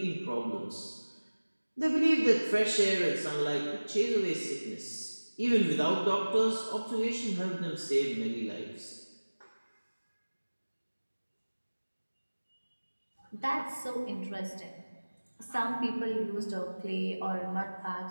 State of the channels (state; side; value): inverted; both; correlation -1.00